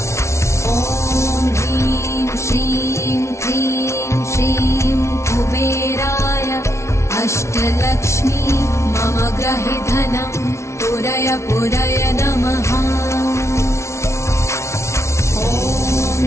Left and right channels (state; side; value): late; right; 0.13 ms